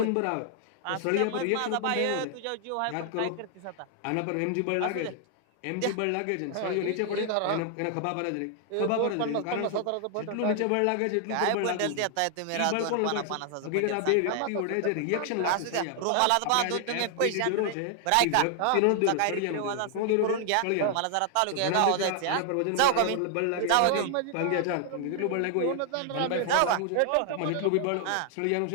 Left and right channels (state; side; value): different; both; correlation 0.00